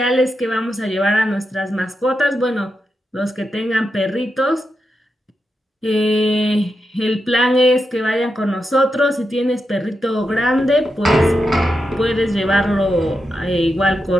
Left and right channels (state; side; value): normal; both; correlation 0.87